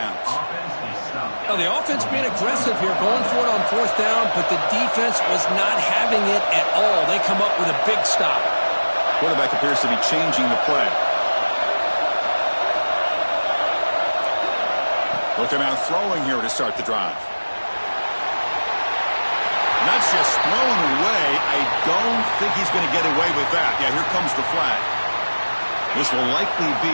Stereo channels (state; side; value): inverted; both; correlation -1.00